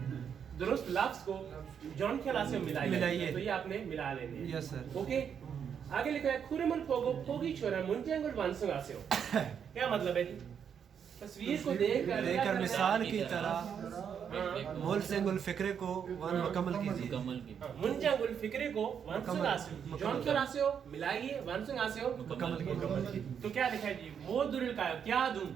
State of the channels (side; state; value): left; quieter; 7.7 dB